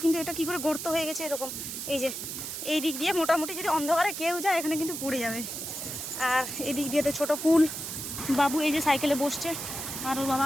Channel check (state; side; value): noise; right; hiss, 6 dB below the sound